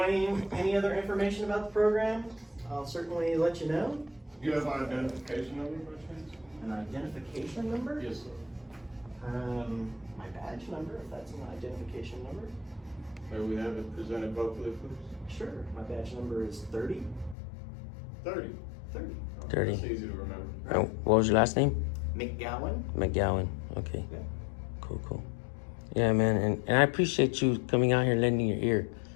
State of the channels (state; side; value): drops out; right; at 17.4 s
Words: any other information about the program, I'll certainly let you know. You have my identification number, by chance? An identification number? Yes, sir. My badge number, if that's an identification number. May we have it presented vocally, please? Sure, my badge number is 30. 30. 30. 30. That's easy to remember. What was your last name? McGowan. McGowan. Okay. Yeah. Cool. Yeah, man, and I appreciate you coming out here and lending your ear.